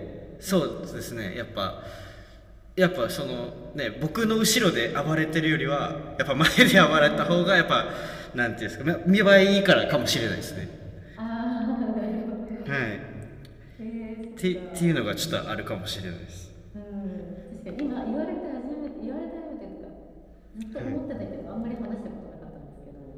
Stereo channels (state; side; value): identical; both; correlation 1.00